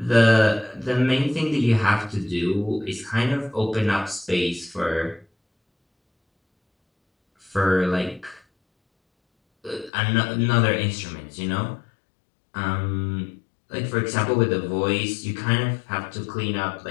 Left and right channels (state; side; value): drops out; right; at 9.9 s